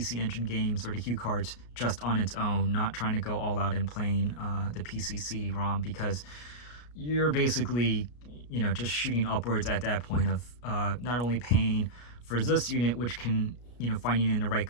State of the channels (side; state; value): right; late; 33 ms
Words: Engine games or the Hue cards just on its own, not trying to go all out and playing the PC CD-ROM, because you're basically, just shooting upwards at that point of not only paying for this unit, which can, finding it in the right